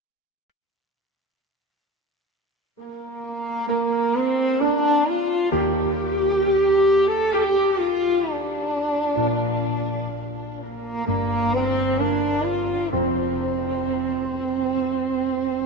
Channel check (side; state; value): both; normal; correlation 0.37